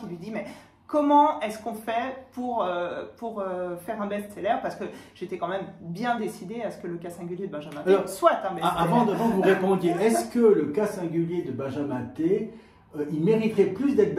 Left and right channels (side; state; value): both; identical; correlation 1.00